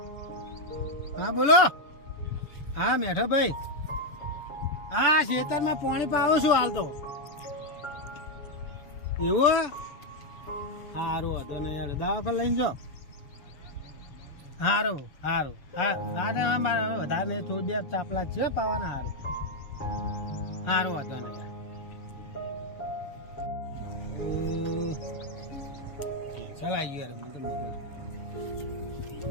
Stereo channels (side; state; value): right; late; 7.1 ms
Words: હા બોલો. હા મેઠો ભાઈ. હા ખેતરમાં પાણી પાવું છું હાલ તો. એવું સારું હતું ને યાર, દવાખાને લઈને જાઓ. સારું સારું. હા મારે વધારે નહીં, થોડી બે ચાપલા છે પાવાના. સારું સારું હતું ને યાર. ચાલ આવી ગયો. મને તો